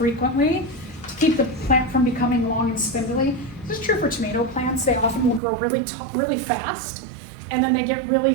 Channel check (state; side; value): drops out; left; at 5.4 s